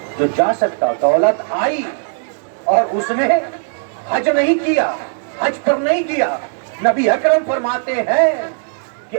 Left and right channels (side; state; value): left; silent; 63 dB below the other